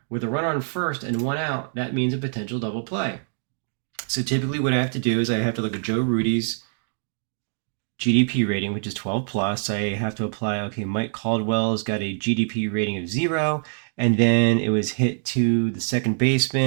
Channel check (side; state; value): left; silent; digital silence